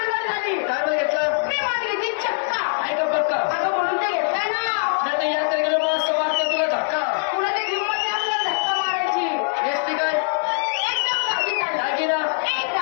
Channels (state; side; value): silent; right; digital silence